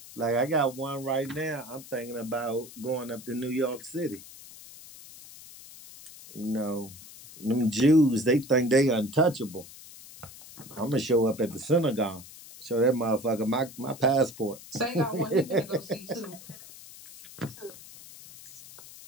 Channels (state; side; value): noise; left; hiss, 17 dB below the sound